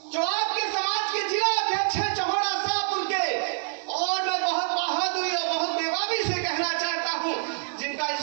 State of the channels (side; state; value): left; silent; digital silence